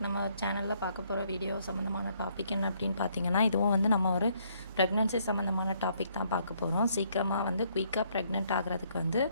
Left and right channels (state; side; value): inverted; both; correlation -0.69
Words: நம்ம சேனலில் பார்க்க போகிற வீடியோ சம்மந்தமான டாபிக் என்ன அப்படின்னு பார்த்தீங்கன்னா, இதுவும் வந்து நம்ம ஒரு ப்ரெக்னென்சி சம்மந்தமான டாபிக் தான் பார்க்க போகிறோம். சீக்கிரமாக வந்து குயிக்காக ப்ரெக்னென்ட் ஆகிறதுக்கு வந்து